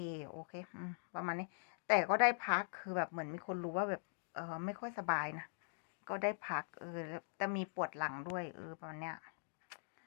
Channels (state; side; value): silent; right; digital silence